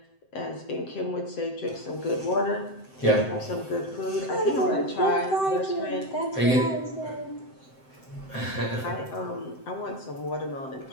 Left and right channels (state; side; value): late; right; 7.7 ms